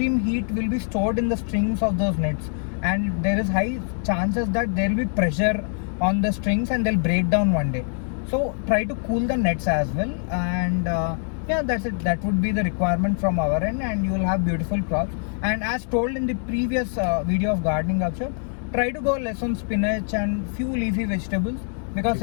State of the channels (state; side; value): silent; right; 59 dB below the other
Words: heat will be stored in the strings of those nets, and there is high chances that there will be pressure on the strings and they'll break down one day. So try to cool the nets as well, and yeah, that's it. That would be the requirement from our end, and you will have beautiful crops. And as told in the previous video of gardening workshop, try to go less on spinach and few leafy vegetables because